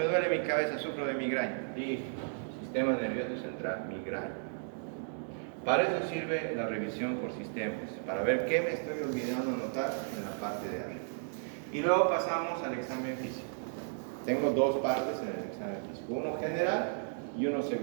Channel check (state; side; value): silent; left; digital silence